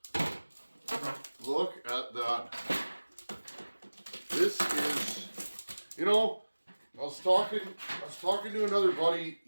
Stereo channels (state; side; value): inverted; both; correlation -1.00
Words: Look at that. This is, you know, I was talking to another buddy